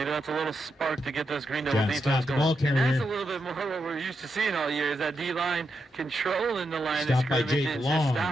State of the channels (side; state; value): both; normal; correlation 0.84